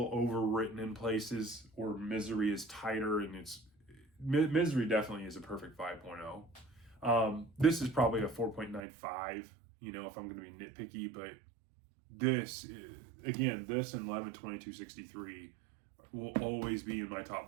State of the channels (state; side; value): drops out; left; at 8.8 s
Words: overwritten in places. Or Misery is tighter, and Misery definitely is a perfect 5.0. This is probably a 4.95. You know, if I'm going to be nitpicky, but this again, this and 11/22/63 will always be in my top